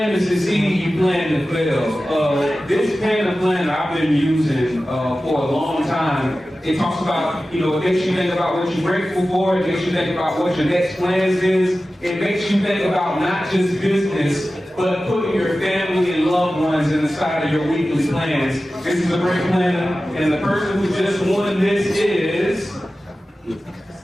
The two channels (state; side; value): normal; both; correlation 0.95